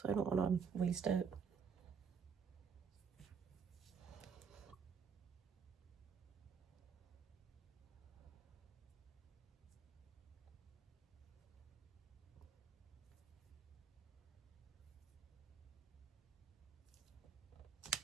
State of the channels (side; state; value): left; quieter; 6.4 dB